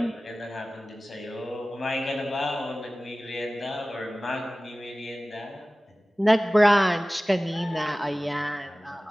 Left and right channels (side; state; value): both; normal; correlation 0.97